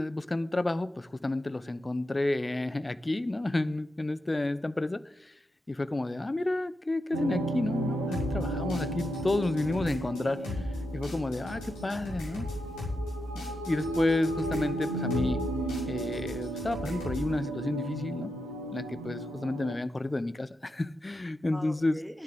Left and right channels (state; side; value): normal; both; correlation 0.87